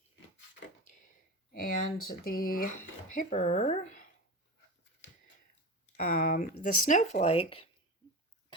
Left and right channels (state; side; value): normal; both; correlation 0.26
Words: and the paper, the snowflake